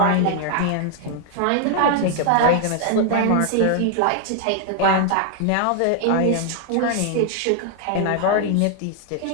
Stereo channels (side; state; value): both; different; correlation 0.00